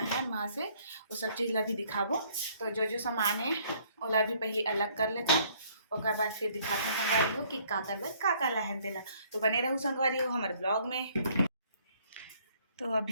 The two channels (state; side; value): inverted; both; correlation -0.62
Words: हैं वहाँ से वो सब चीज़ ला भी दिखाबो। तो जो सामान है ओला भी पहले अलग कर लेते और बाद फिर दिखाते हैं संगवारी हो कि का करबे का लाए हैं तेला। तो बने रहूँ संगवारी हो हमारे ब्लॉग में। तो